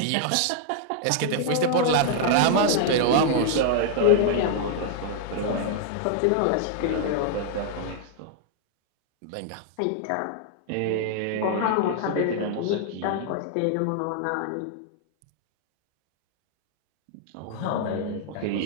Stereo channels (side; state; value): both; different; correlation 0.00